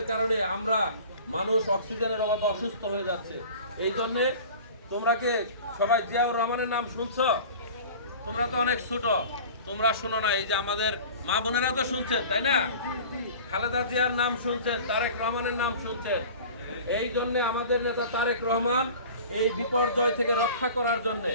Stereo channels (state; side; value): inverted; both; correlation -0.41